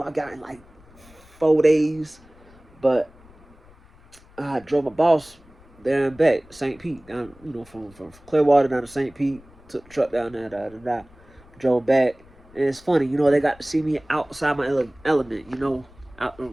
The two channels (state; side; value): noise; left; rumble, 25 dB below the sound